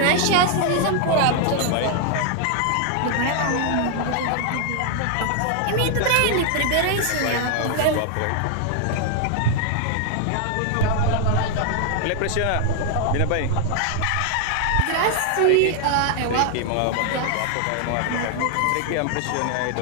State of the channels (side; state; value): both; different; correlation 0.00